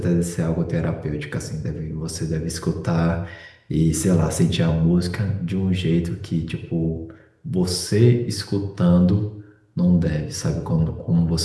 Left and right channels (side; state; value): both; identical; correlation 1.00